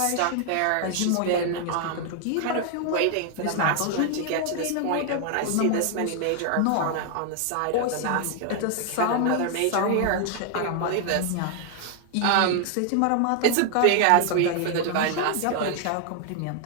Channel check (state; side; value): different; both; correlation 0.00